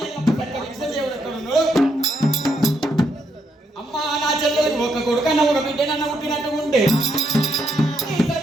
ఒక కొడుకన్న ఒక బిడ్డనన్న పుట్టినట్టు ఉంటే ఈ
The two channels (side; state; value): both; normal; correlation 0.77